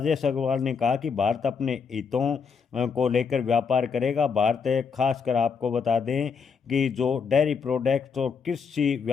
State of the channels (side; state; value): right; quieter; 5.9 dB